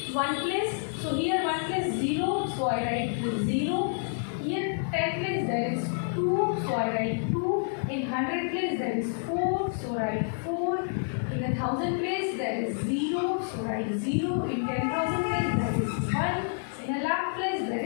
1 place. So here 1 place 0, so I write 0. Here 10 place there is 2, so I write 2. In 100 place there is 4, so write 4. In 1,000 place there is 0, so write 0. In 10,000 place there is 1. In a lakh place there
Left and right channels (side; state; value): right; silent; digital silence